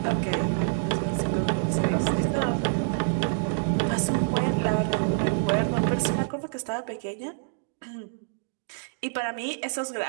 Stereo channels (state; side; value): silent; left; digital silence